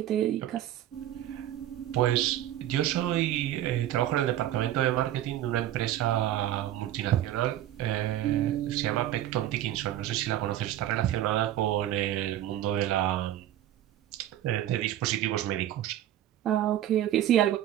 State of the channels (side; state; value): left; quieter; 12.6 dB